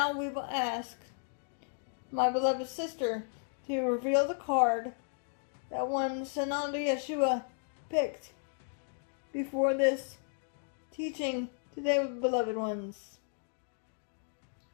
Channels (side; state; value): right; silent; 55 dB below the other